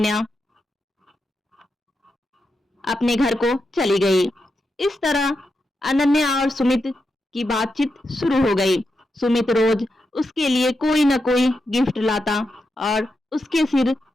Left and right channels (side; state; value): both; normal; correlation 0.87